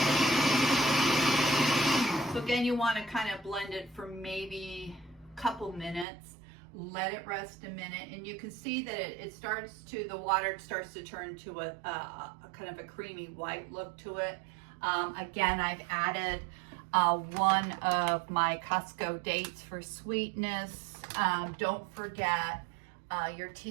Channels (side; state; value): left; drops out; at 6.1 s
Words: So again, you want to kind of blend it for maybe a couple minutes. Let it rest a minute, and you can see that the water starts to turn to a kind of a creamy white look to it. Again, I've added 1 of my Costco dates for sweetness. Don't forget your